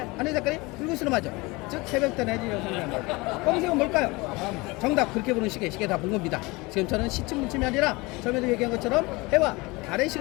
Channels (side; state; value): right; quieter; 24.2 dB